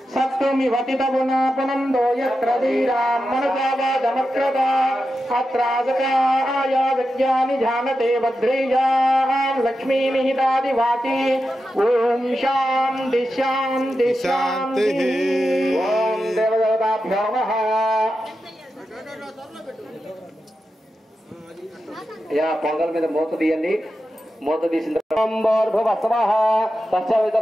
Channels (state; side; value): normal; both; correlation 0.90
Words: సత్తుమివతితగుణాపునందో యత్ర ధీరాం మనుజావాదమక్రత అత్రాసకాయ విద్యాని జానతే భద్రేయాం లక్ష్మీనిహితాదివాతి ఓం శాంతి శాంతి శాంతి. ఓం దేవదేవతాభ్యో నమః. పొంగల్ మీద మూత తీయండి. మూత తీసిన